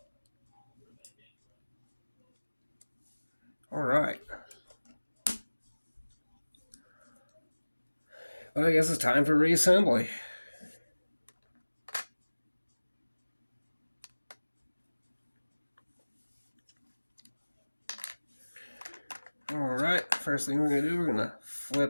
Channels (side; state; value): both; inverted; correlation -1.00